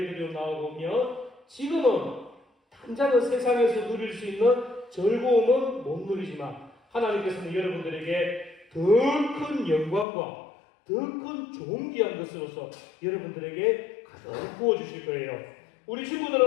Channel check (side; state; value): right; drops out; at 10.1 s